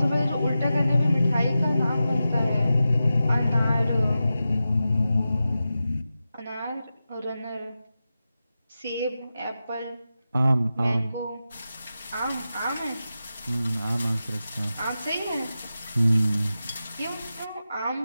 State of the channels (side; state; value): both; inverted; correlation -0.92